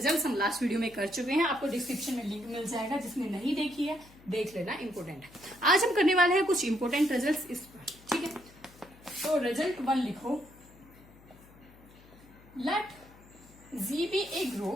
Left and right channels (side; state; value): left; noise; hum, 24 dB below the sound